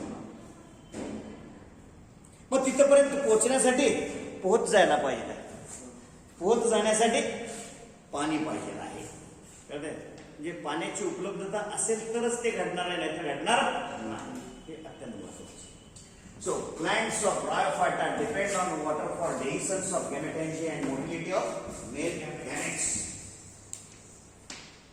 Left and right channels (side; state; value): both; identical; correlation 1.00